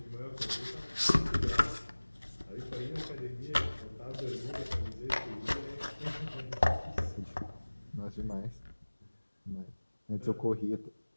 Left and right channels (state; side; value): inverted; both; correlation -1.00